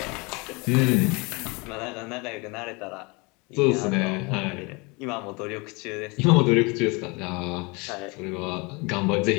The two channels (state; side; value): quieter; right; 28.0 dB